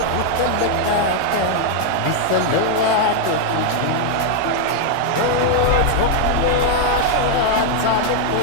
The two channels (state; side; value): different; both; correlation 0.00